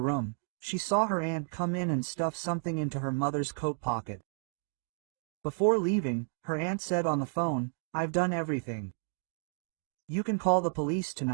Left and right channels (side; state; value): left; silent; 56 dB below the other